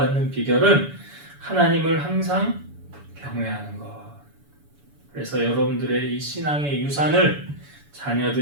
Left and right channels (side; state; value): left; late; 7.0 ms